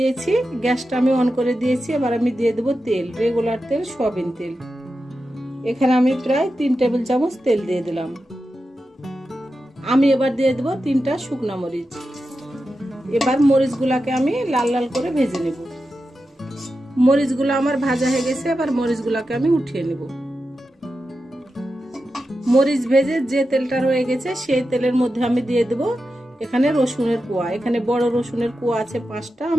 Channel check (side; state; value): both; normal; correlation 0.90